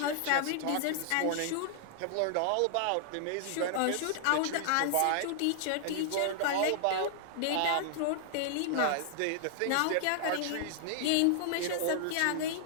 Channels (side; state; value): both; different; correlation -0.01